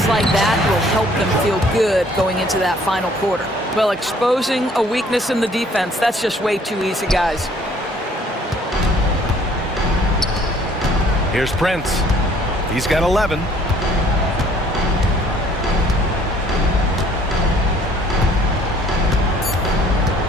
like that will help them feel good going into that final quarter. Well, exposing a weakness in the defense, that's just way too easy, guys. Here's Prince. He's got 11.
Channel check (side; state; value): both; normal; correlation 0.58